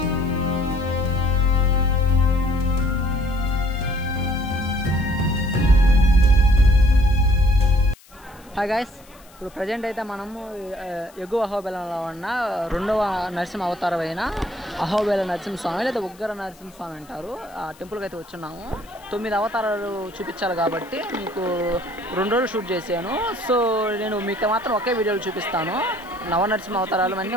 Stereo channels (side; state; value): left; noise; hiss, 26 dB below the sound